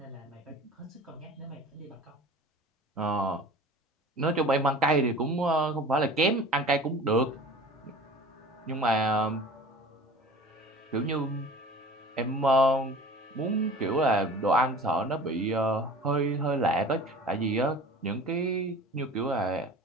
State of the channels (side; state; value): both; normal; correlation 0.42